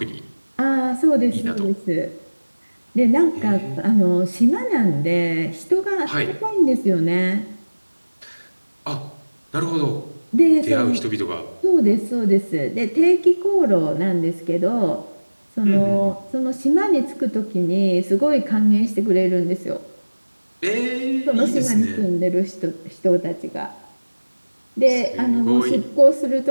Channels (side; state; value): both; inverted; correlation -1.00